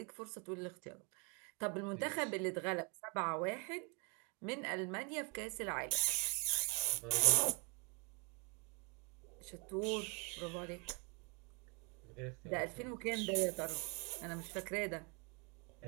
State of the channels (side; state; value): left; quieter; 29.8 dB